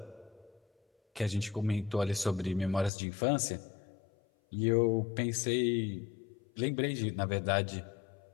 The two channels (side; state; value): right; drops out; at 2.9 s